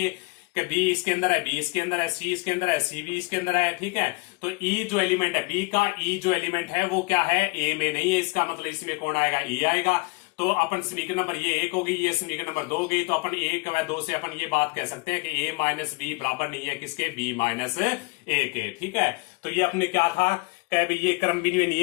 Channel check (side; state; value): right; quieter; 26.6 dB